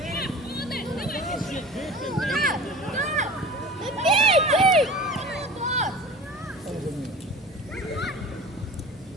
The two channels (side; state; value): both; normal; correlation 0.38